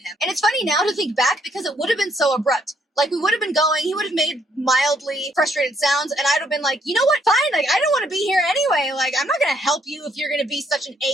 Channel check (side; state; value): both; normal; correlation 0.70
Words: And it's funny now to think back because it would have been so abrupt. Like, we would have been going, he would have made mildly frustrated sounds, and I'd have been like, you know what, fine, like, I don't want to be here anyway, like, I'm not going to help you if you're going to be such an